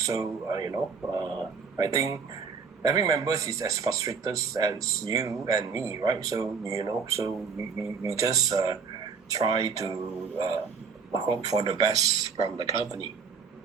So I think every member is as frustrated as you and me, right? So so we just try to hope for the best from the company.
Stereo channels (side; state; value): left; quieter; 5.6 dB